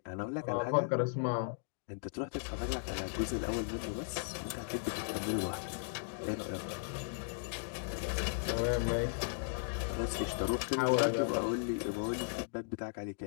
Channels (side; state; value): right; silent; digital silence